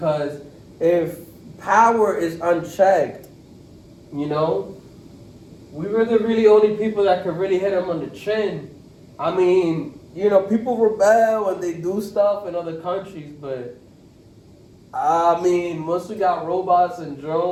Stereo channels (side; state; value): both; identical; correlation 1.00